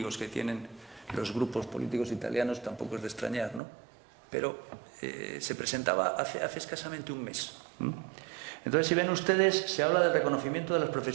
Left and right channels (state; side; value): drops out; left; at 3.6 s